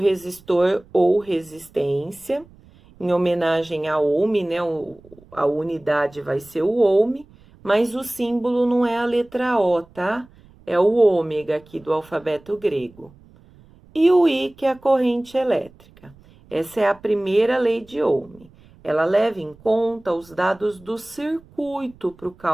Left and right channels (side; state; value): right; noise; rumble, 26 dB below the sound